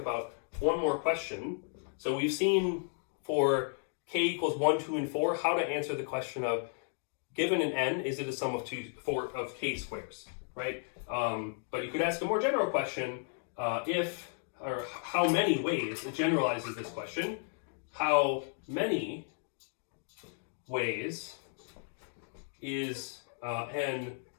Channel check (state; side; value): silent; right; 55 dB below the other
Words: one more question. So we've seen for k equals 1, 2, and 4, how to answer the question of, given an n, is it a sum of k squares, right? But you could ask a more general question, how many ways, it generalizes this question, how many ways is n